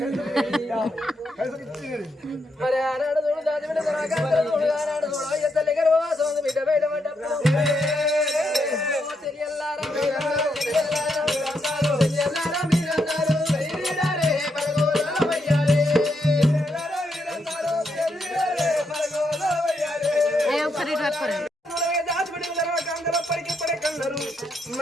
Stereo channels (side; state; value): both; normal; correlation 0.79